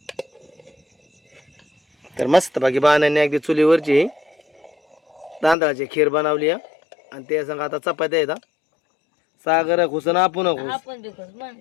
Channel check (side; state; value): right; drops out; at 5.6 s